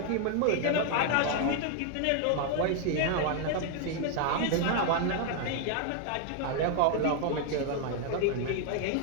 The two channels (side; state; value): both; different; correlation 0.00